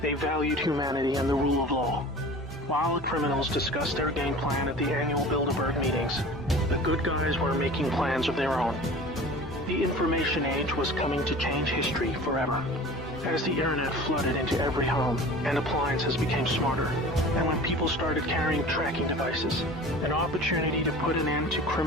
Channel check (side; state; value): both; normal; correlation 0.40